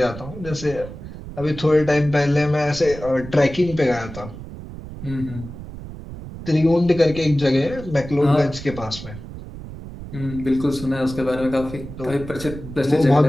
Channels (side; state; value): right; noise; rumble, 12 dB below the sound